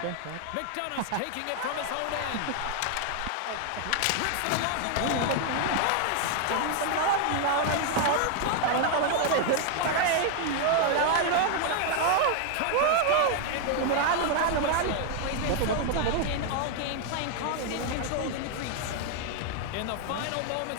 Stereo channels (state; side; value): different; both; correlation 0.00